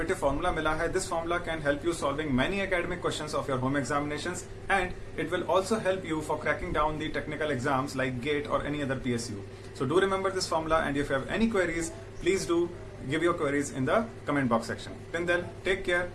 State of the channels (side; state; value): both; identical; correlation 1.00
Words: फॉर्मूला मिला है, this formula can help you solving many academic questions of your home examinations and it will also help you for cracking down the technical exams like GATE or any other PSU. So do remember this formula and if you have any queries, please do give your queries in the comment box section. Till then, take care.